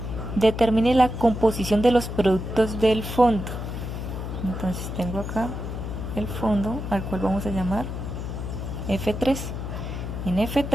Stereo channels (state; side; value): noise; left; hum, 6 dB below the sound